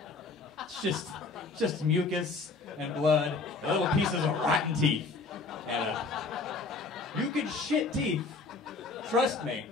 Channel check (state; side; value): quieter; right; 4.0 dB